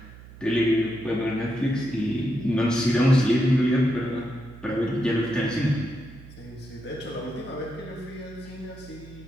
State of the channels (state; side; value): noise; right; hum, 18 dB below the sound